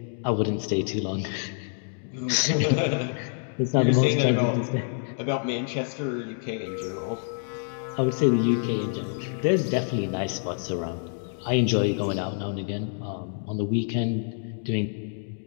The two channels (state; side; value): silent; right; 60 dB below the other